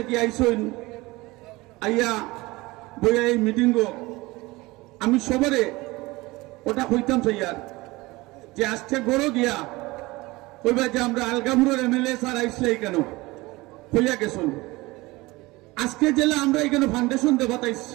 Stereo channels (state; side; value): quieter; left; 21.4 dB